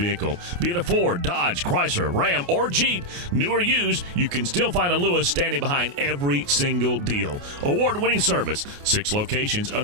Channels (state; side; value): late; left; 28 ms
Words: Be it a Ford, Dodge, Chrysler, Ram, or Jeep, new or used, you can still find a Lewis standing behind every single deal. Award-winning service, 6 locations